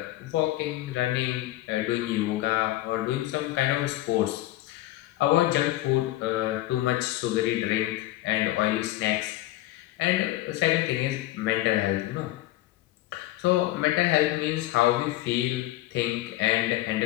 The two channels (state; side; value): quieter; right; 16.2 dB